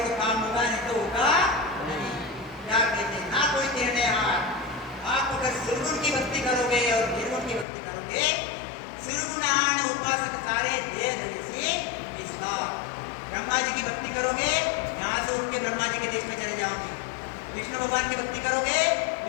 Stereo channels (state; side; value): drops out; right; at 7.7 s